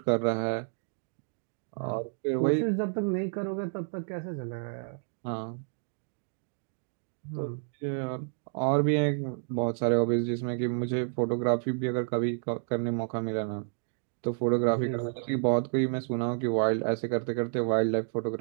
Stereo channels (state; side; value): silent; left; digital silence